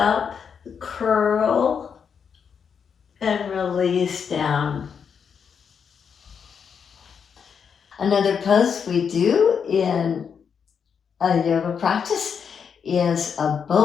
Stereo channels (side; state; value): right; quieter; 6.8 dB